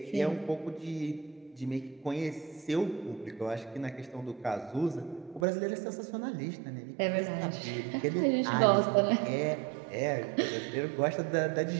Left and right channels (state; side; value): drops out; left; at 5.5 s